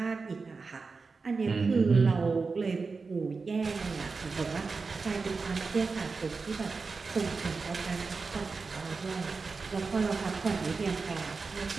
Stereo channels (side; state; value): left; quieter; 4.4 dB